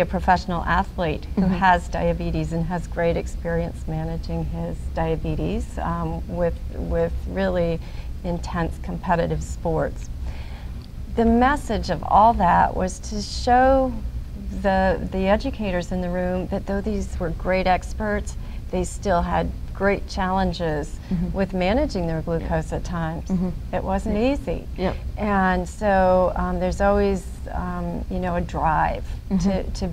a professional athlete who has diabetes and has great experience managing his diabetes with really intense competitive sports. The message of all that was to show the educators in the room that though these were great experts, they still had great challenges with managing their glucose at times. It wasn't easy. And so there's always you know, a drive to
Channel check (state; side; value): identical; both; correlation 1.00